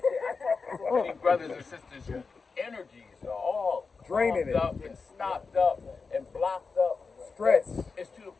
So many brothers and sisters whose energies are all Draining clogged up and stopped up and blocked up. Stress. It's to the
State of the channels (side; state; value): right; quieter; 4.7 dB